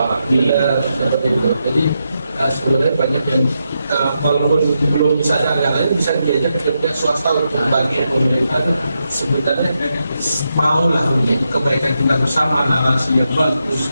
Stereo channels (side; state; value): both; inverted; correlation -0.84